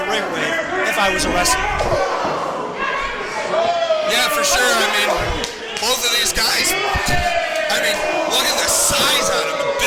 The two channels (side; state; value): both; identical; correlation 1.00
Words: ring with if I was a wrestler. Yeah, for sure. I mean, both of these guys, I mean, look at the size on them.